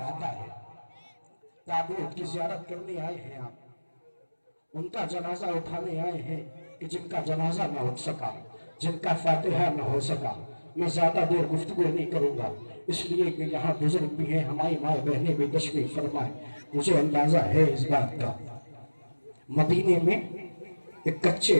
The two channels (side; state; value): both; inverted; correlation -1.00